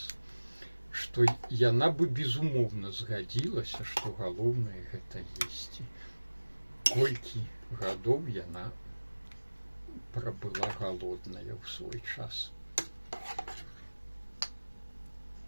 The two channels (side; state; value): both; inverted; correlation -1.00